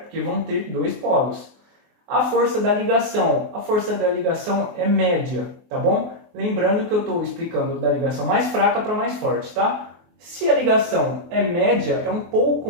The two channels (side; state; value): left; late; 24 ms